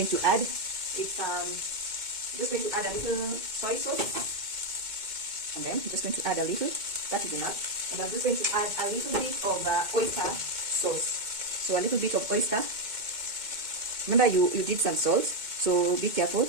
to add is just going to add a little soy sauce, and then I'm just going to add a little. That is enough. And I'm just going to add a little bit of oyster sauce. So a little bit of oyster. Remember you did some salt, so be careful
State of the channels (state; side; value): late; left; 2.2 ms